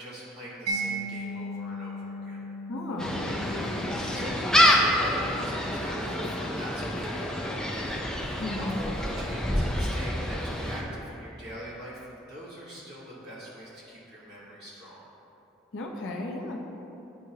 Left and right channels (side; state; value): both; normal; correlation 0.60